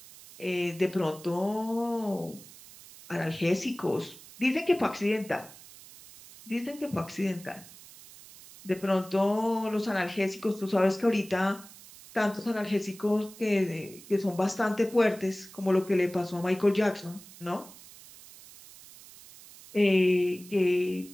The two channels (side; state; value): right; noise; hiss, 19 dB below the sound